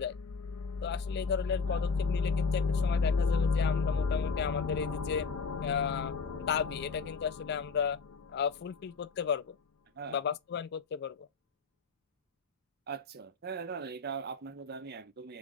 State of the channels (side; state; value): right; quieter; 4.8 dB